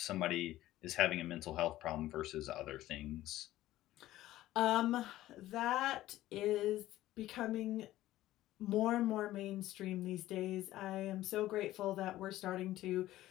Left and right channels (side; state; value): right; quieter; 15.1 dB